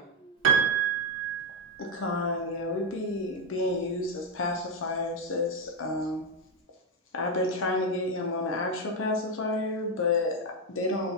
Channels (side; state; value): both; normal; correlation 0.05